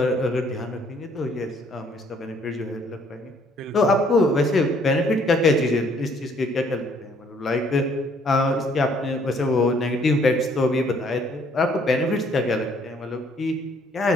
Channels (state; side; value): normal; both; correlation 0.64